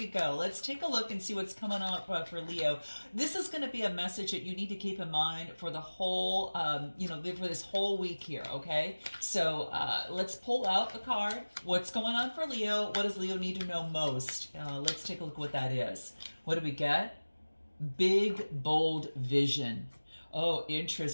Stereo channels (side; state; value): both; inverted; correlation -1.00